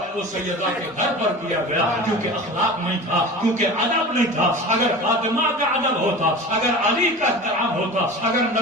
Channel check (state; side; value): normal; both; correlation 0.35